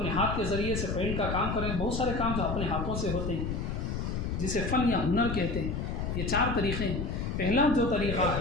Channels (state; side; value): noise; left; rumble, 2 dB below the sound